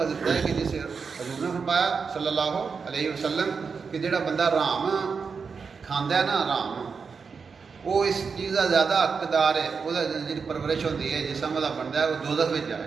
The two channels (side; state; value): left; quieter; 5.4 dB